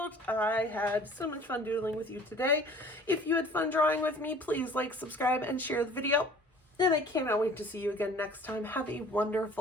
I had so much fun doodling with you today. If you had fun drawing with me, please like, subscribe, and share the video. And I cannot wait to see you again next time. Have a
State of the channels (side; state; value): both; normal; correlation 0.49